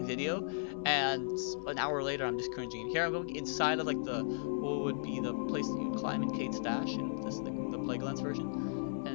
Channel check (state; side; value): silent; right; digital silence